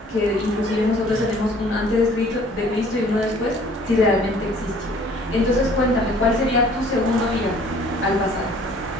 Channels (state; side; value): normal; both; correlation 0.54